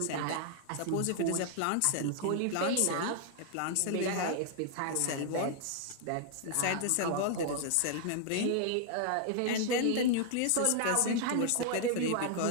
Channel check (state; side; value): different; both; correlation 0.00